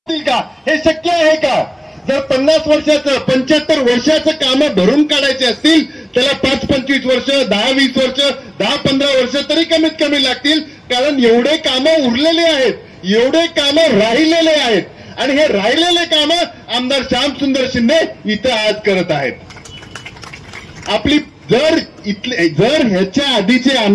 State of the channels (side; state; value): both; identical; correlation 1.00